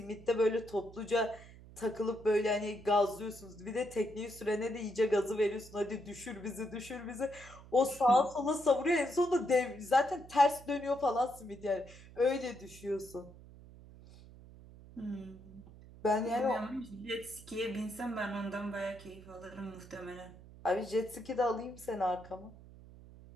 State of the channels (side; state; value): right; noise; hum, 19 dB below the sound